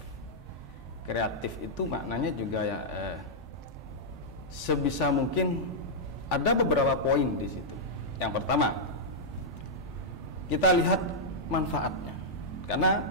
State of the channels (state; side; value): normal; both; correlation -0.08